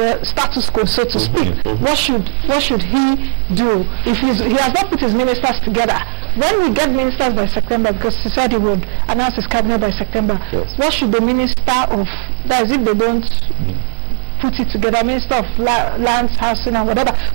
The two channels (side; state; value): left; silent; digital silence